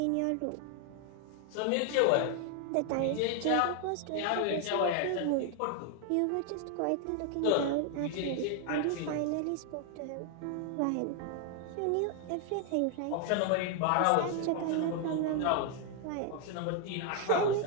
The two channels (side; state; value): both; different; correlation 0.00